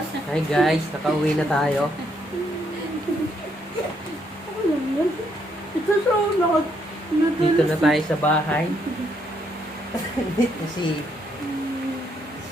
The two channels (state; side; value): normal; both; correlation 0.74